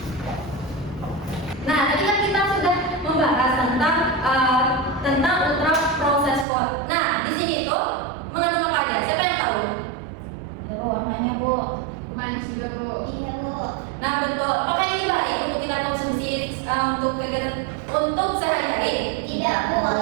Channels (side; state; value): left; drops out; at 6.5 s